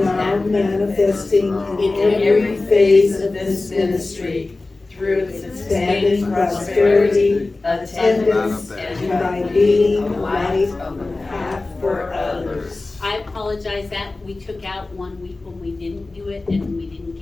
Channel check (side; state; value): right; quieter; 3.3 dB